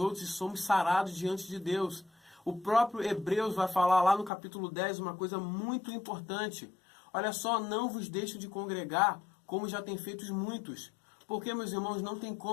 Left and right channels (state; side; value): drops out; right; at 4.3 s